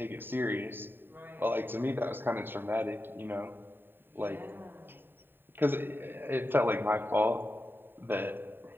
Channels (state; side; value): late; left; 0.097 ms